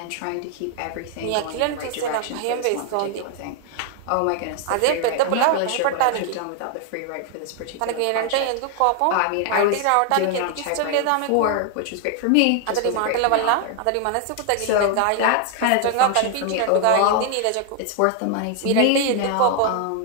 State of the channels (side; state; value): both; different; correlation 0.00